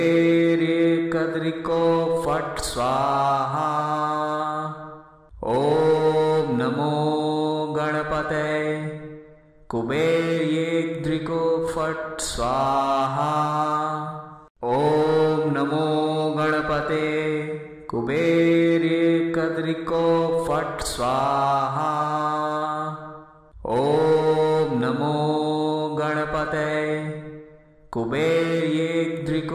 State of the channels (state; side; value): identical; both; correlation 1.00